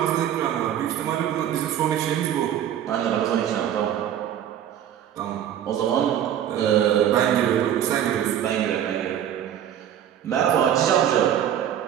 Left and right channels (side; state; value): left; quieter; 10.3 dB